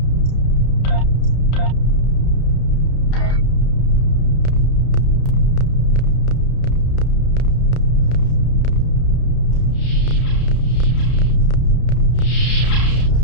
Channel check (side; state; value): right; late; 32 ms